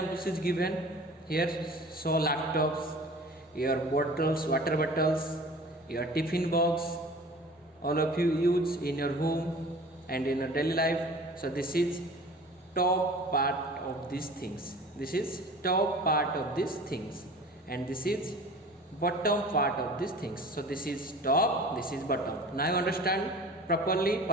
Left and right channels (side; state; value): both; normal; correlation 0.43